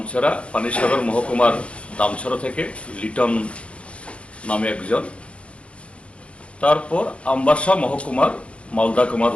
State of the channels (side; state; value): right; late; 0.061 ms